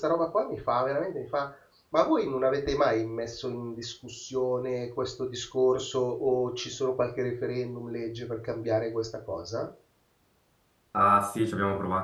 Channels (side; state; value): both; identical; correlation 1.00